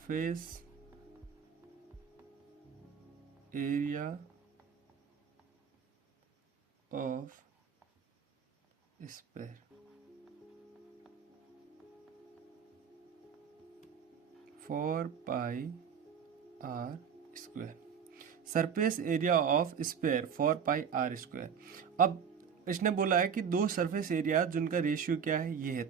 area of sphere 4πr²। Surface area of sphere 4πr²। अब इसने बोला है कि दो सरफेस एरिया जिनका रेशियो क्या है ये है,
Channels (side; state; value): left; quieter; 7.2 dB